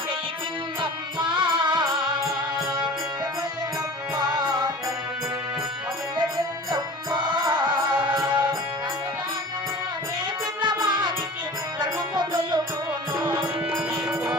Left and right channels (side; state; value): both; normal; correlation 0.39